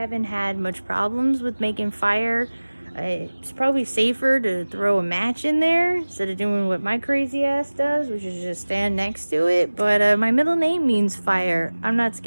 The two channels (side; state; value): both; inverted; correlation -1.00